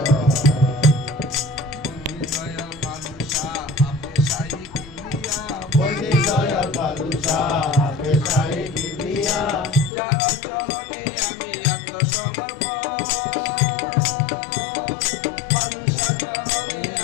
বন্দি দয়াল বাদুশা পেশাই কিবরিয়া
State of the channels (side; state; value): right; drops out; at 9.9 s